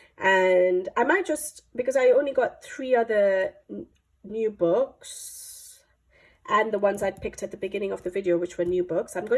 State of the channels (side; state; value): both; identical; correlation 1.00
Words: and I might just, because I only got 3 other new books and the ones I'd picked at the beginning of the video, which were new books, I'm